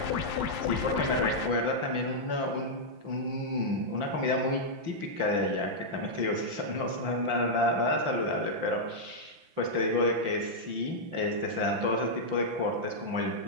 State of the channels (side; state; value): left; late; 5.9 ms